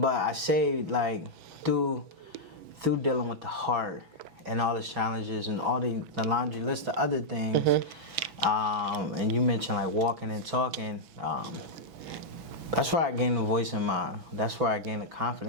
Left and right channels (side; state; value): left; late; 6.1 ms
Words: I say, like, through dealing with the heart and all the challenges and all the laundry list of other things, and you mentioned like walking and talking, that's where I gained the voice that's where I gained the